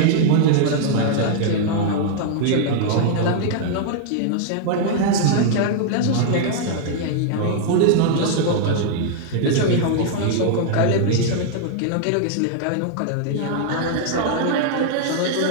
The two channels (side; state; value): both; different; correlation -0.01